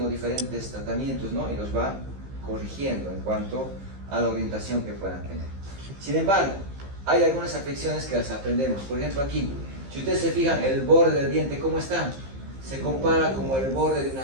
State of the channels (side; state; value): left; late; 15 ms